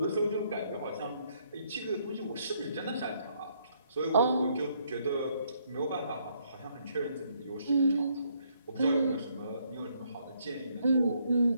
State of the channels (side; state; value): both; inverted; correlation -0.71